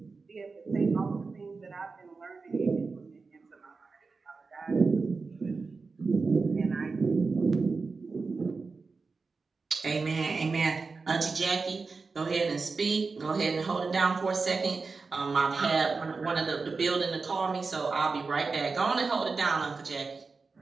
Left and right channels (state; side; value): quieter; left; 4.3 dB